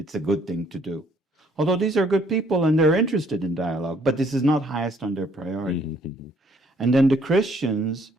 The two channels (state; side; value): normal; both; correlation 0.64